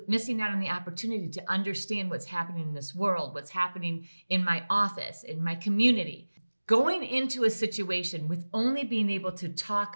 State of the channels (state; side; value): inverted; both; correlation -1.00